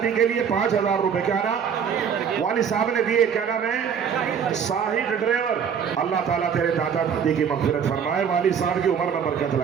के लिए 5000 रुपए। क्या नाम वाली साहब ने दिए? क्या नाम है? साहिद ड्राइवर। अल्लाह ताला तेरे दादा दादी की मगफिरत फरमाए, वाली साहब की उम्र में बरकत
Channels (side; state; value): left; quieter; 7.4 dB